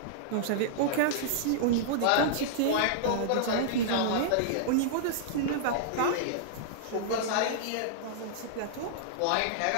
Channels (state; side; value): different; both; correlation -0.02